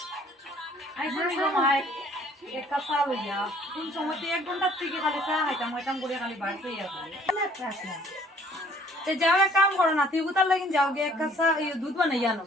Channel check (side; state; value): both; normal; correlation 0.58